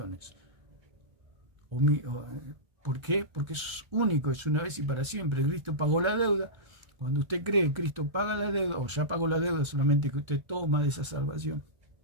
¿Por qué? Porque eso es único, es una vez y para siempre. Cristo pagó la deuda. Cuando usted cree que Cristo paga la deuda, o ya pagó la deuda, solamente que usted toma de esa salvación.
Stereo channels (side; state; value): left; late; 1.7 ms